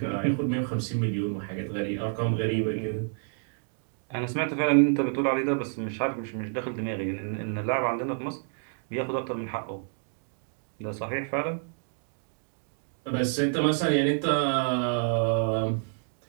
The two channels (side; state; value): left; silent; 59 dB below the other